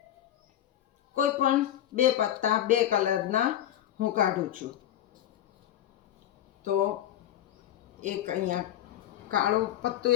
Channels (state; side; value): quieter; right; 11.8 dB